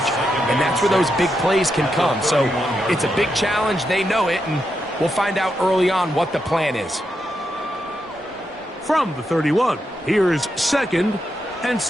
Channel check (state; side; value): normal; both; correlation 0.84